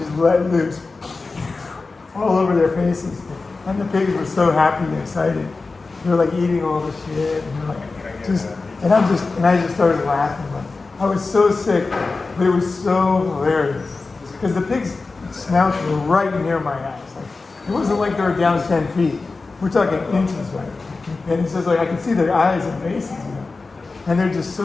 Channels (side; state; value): right; quieter; 3.9 dB